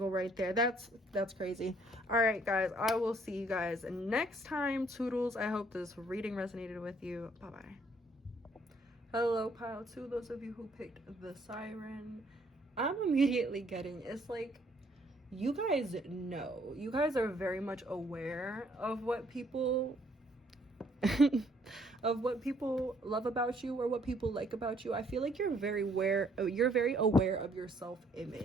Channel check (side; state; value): both; normal; correlation 0.65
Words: right there. That's crazy. All right, guys, I will see you guys next time. Toodles. I hope this reading resonated with you. Bye-bye. Hello, pile 2. Those of you who picked the siren, I'm immediately getting, it's like, you guys know. You guys are very much aware of what people of what people love about you or what people like about you. I feel like you're very aware of your